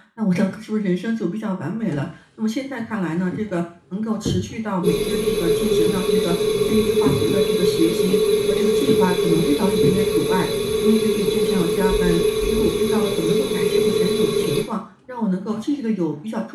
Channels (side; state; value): both; identical; correlation 1.00